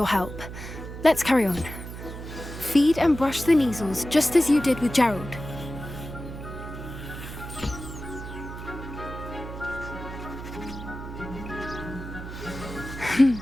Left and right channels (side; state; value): right; noise; hum, 10 dB below the sound